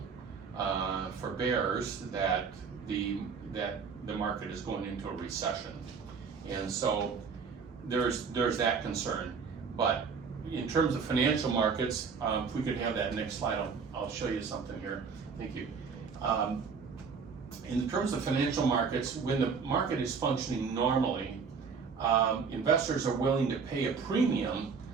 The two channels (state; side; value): quieter; left; 5.6 dB